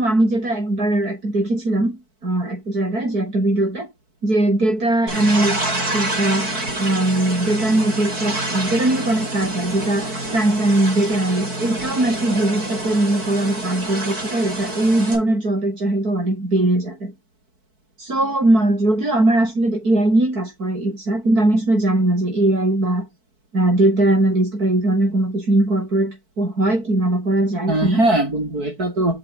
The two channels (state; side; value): late; left; 4.6 ms